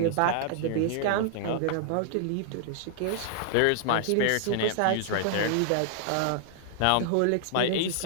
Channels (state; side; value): different; both; correlation -0.01